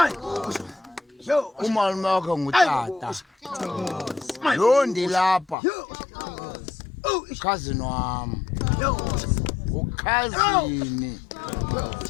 Umalume wakhe ngutata. Lo ndilapha. Cousin wam. Ukhazini.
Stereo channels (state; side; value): drops out; right; at 5.6 s